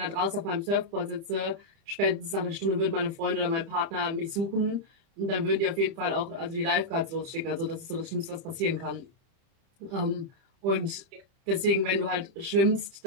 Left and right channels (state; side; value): late; left; 30 ms